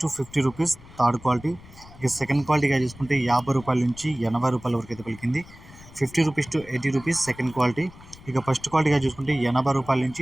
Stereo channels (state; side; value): noise; left; rumble, 21 dB below the sound